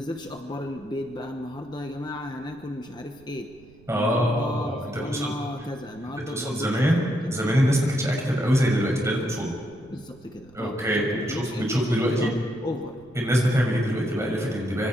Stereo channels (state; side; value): noise; right; rumble, 25 dB below the sound